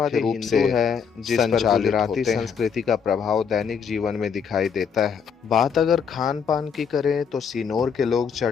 रूप से है, जिस पर गुजराती संस्कृति का प्रभाव दैनिक जीवन में दिखाई देता है। बात अगर खान पान की करें तो सिनोर के लोग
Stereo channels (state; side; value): quieter; right; 6.7 dB